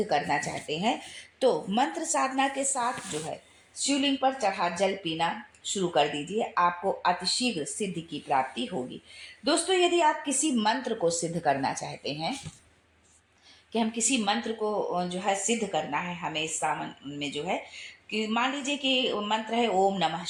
करना चाहते हैं, तो मंत्र साधना के साथ जो है शिवलिंग पर चढ़ा जल पीना शुरू कर दीजिए। आपको अतिशीघ्र सिद्धि की प्राप्ति होगी। दोस्तों, यदि आप किसी मंत्र को सिद्ध करना चाहते हैं कि हम किसी मंत्र को जो है सिद्ध करना है, हमें इस सावन में जो है कि मान लीजिए कि मंत्र है ओम नमः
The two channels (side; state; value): both; identical; correlation 1.00